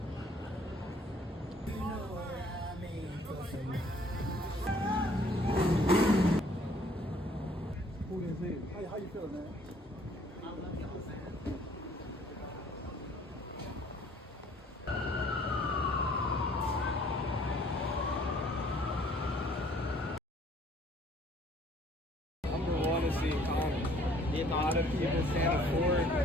How you feeling, man? Number one is the economy. A lot of people can't afford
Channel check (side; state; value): both; normal; correlation 0.59